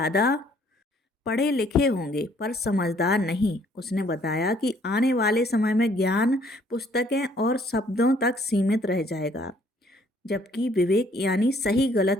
पढ़े लिखे होंगे, पर समझदार नहीं। उसने बताया कि आने वाले समय में ज्ञान पुस्तकें और शब्दों तक सीमित रह जाएगा, जबकि विवेक यानी सही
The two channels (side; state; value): both; normal; correlation 0.63